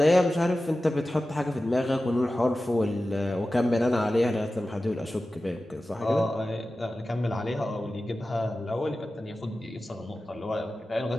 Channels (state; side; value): normal; both; correlation 0.95